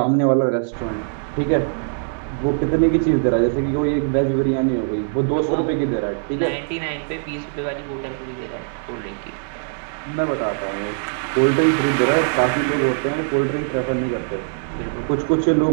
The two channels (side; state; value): left; silent; 65 dB below the other